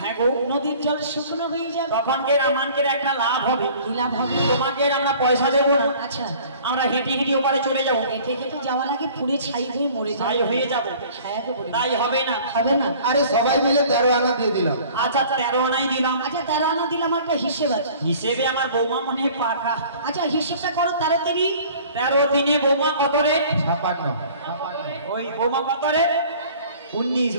হ্যাঁ গো। নদীর জল শুকনো হয়ে যাবে। তখন কে রামানকের একটা লাভ হবে। কি লাভ হবে? তোমাকে আমরা পয়সা দেবো না, আচ্ছা, আমরা হেঁটে হেঁটে ওপারে চলে যাবো, হেঁটে হেঁটে যাওয়ার আগে পুড়ে ছাই হয়ে মরে তাই যাবে। হয়ে যাবো। হ্যাঁ গো বুড়ি। তাই হবে না। হবে না। আরে সবাই মিলে 13 আনা দিয়ে দিলাম। আচ্ছা 13 আনাই দিলাম। আচ্ছা 13 আনা দিলাম, একটা হিসেব আছে। হিসেবে আমার বৌমা মনে হয় পাকা। আচ্ছা হিসেবটা করো তাড়াতাড়ি। 13 দিনে বৌমা কত রে? 56 ওই বৌমা কত রে?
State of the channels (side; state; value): both; inverted; correlation -0.49